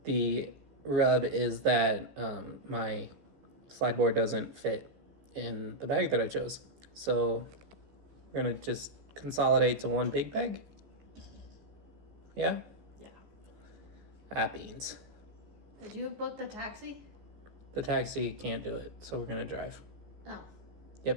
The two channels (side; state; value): left; late; 15 ms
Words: the rub is that my slide board doesn't fit in the bag that I chose. So we're gonna just consolidate to one big bag. Yeah? Yeah. Beans. Did you book the taxi? The taxi can't do it, so we're gonna drive. Oh.